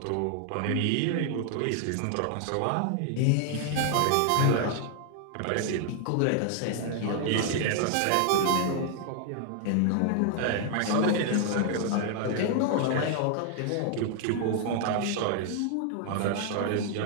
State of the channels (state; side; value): different; both; correlation 0.00